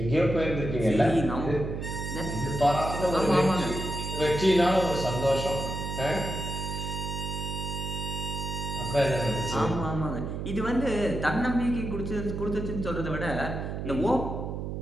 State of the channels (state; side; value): noise; right; hum, 5 dB below the sound